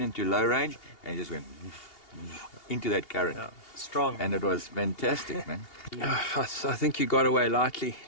into low range and it just went into that current. Yeah, strong. And it was fantastic, man. I think you got away lightly,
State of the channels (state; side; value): late; right; 2.8 ms